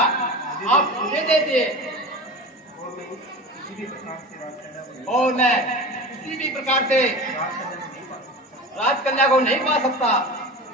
आप मुझे दे दिए और मैं किसी भी प्रकार से राजकन्या को नहीं पा सकता।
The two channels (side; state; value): both; normal; correlation 0.30